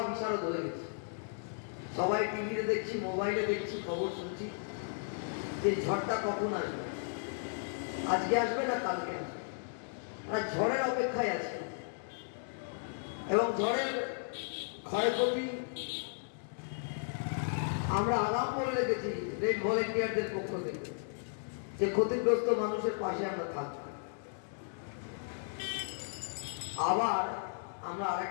বিশারদ হয়ে গেছে। সবাই টিভিতে দেখছি, মোবাইলে দেখছি, খবর শুনছি যে ঝড়টা কখন আসবে, আজকে আসবে না কালকে আসবে, আর ঝড়ের অপেক্ষায় আছে। এবং ঝড়ের ক্ষয়ক্ষতি আমরা আগাম করে রেখেছি রেড ভলেন্টিয়ারদের পক্ষ থেকে যে ক্ষতিগ্রস্ত মানুষের পাশে আমরা থাকবো। আবার আমরা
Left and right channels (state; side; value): silent; right; digital silence